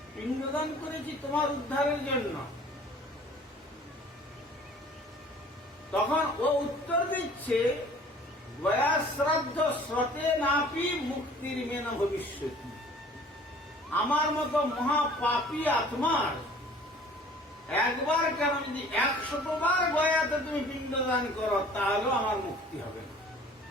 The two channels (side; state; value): both; normal; correlation 0.50